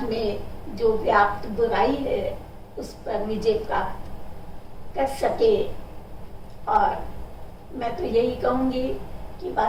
में जो व्याप्त बुराई है उस पर विजय प्राप्त कर सके। और मैं तो यही कहूंगी कि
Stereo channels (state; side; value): identical; both; correlation 1.00